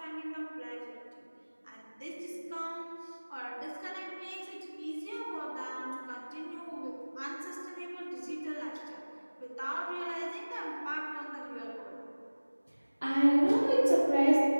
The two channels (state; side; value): inverted; both; correlation -1.00